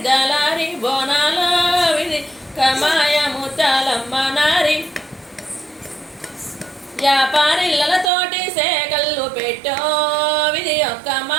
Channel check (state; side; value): drops out; left; at 8.1 s